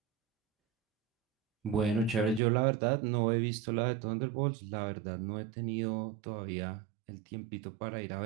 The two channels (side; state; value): left; drops out; at 2.4 s